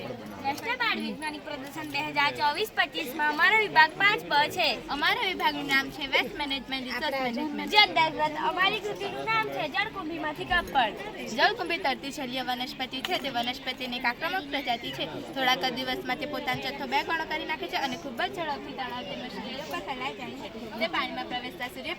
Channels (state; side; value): identical; both; correlation 1.00